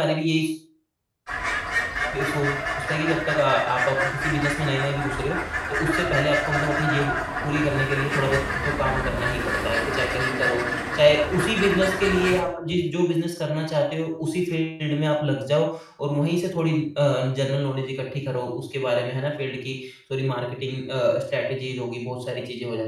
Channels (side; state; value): both; identical; correlation 1.00